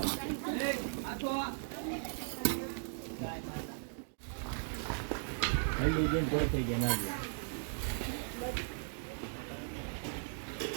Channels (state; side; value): silent; left; digital silence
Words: હલ્લી જઈને કોઈ થઈ ગયા ના ગયા